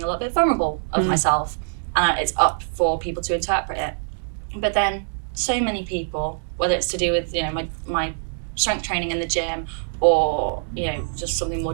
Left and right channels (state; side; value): silent; left; digital silence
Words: a little bit vulnerable of myself, and it's up for people to interpret it. But then so many people, whether it's to do with, you know, my strength training in the gym, or, you know, just something more